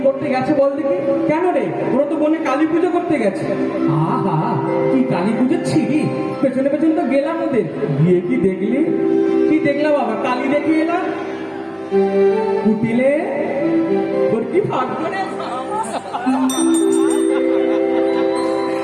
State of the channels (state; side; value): identical; both; correlation 1.00